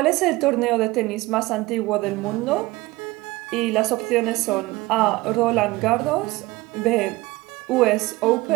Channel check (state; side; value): quieter; left; 20.4 dB